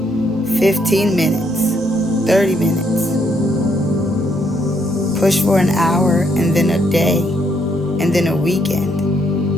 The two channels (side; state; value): both; normal; correlation 0.73